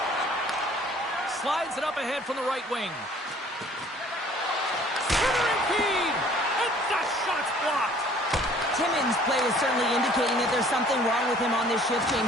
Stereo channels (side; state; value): both; normal; correlation 0.54